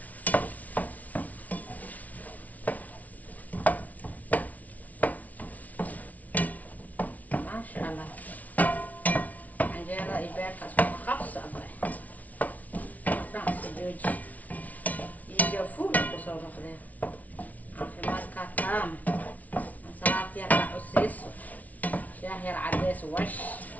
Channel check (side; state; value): right; late; 0.072 ms